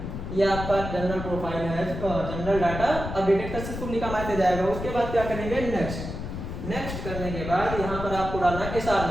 ये आपका जनरल प्रोफाइल है, जनरल डाटा अपडेटेड सक्सेसफुली का मैसेज आएगा। उसके बाद क्या करेंगे, नेक्स्ट करने के बाद यहाँ पर आपको डालना है एसआर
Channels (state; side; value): noise; left; rumble, 7 dB below the sound